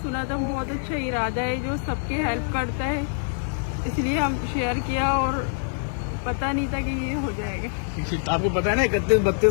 सुना था, बहुत अच्छा इरादा है जो सबके हेल्प करता है, इसलिए हम शेयर किया और पता नहीं था कि ये हो जाएगा। आपको पता है ना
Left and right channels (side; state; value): right; silent; digital silence